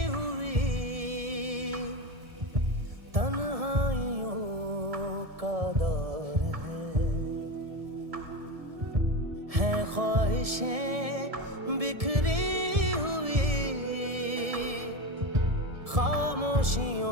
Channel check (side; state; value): left; late; 1.7 ms